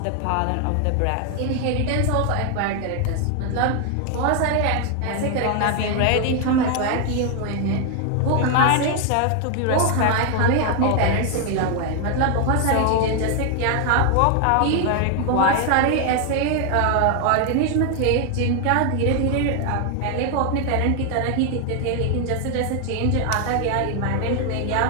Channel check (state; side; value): different; both; correlation 0.01